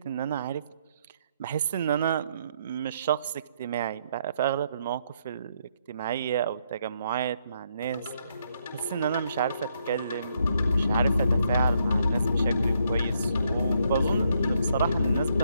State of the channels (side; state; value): both; inverted; correlation -0.74